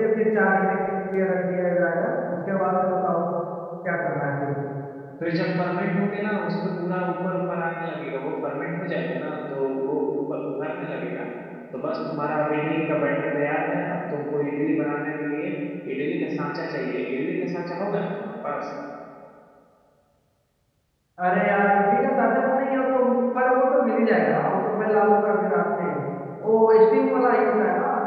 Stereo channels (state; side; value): identical; both; correlation 1.00